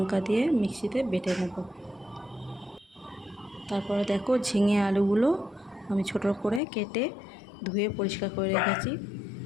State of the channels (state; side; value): drops out; right; at 6.6 s